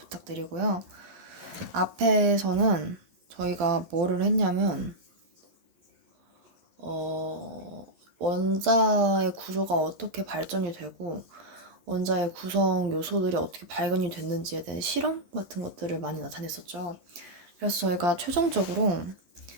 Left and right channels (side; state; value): left; late; 12 ms